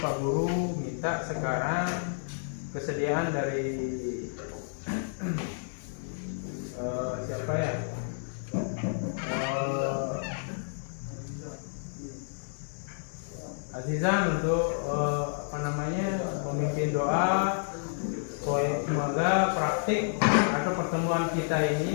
Guru minta sekarang kesediaan dari siapa ya? Azizan untuk memimpin doa. Semoga praktik atau pertemuan kita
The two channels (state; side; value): silent; right; 58 dB below the other